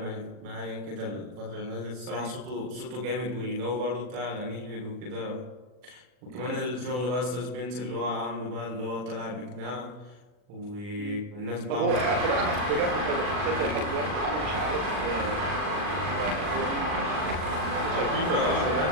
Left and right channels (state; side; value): late; left; 40 ms